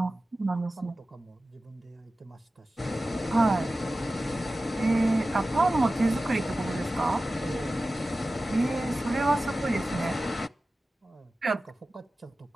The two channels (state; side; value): normal; both; correlation 0.95